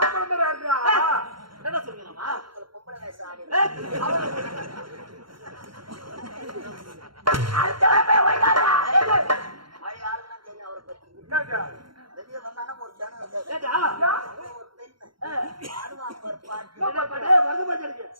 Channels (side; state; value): left; late; 0.73 ms